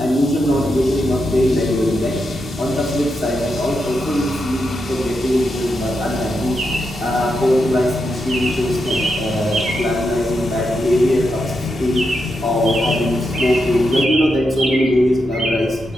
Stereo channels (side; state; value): both; normal; correlation 0.85